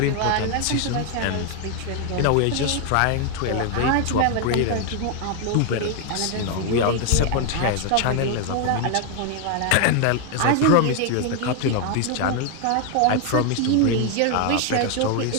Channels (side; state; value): both; different; correlation 0.01